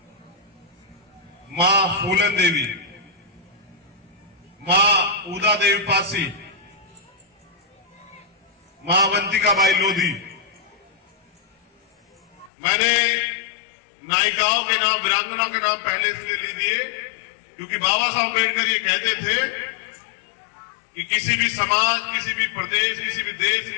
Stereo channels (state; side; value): drops out; right; at 12.5 s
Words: मां फूलन देवी, मां उदा देवी पासी, मां अवंतिकाबाई लोधी। मैंने नायिकाओं के नाम, वीरांगना के नाम पहले इसलिए ले दिए क्योंकि बाबा साहब अम्बेडकर ये कहते थे कि किसी भी समाज, किसी भी प्रदेश, किसी भी देश